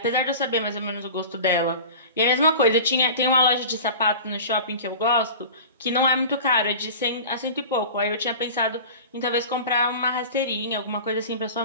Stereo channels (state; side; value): inverted; both; correlation -0.36